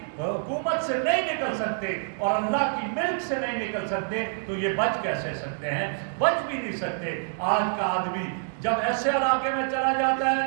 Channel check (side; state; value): left; silent; digital silence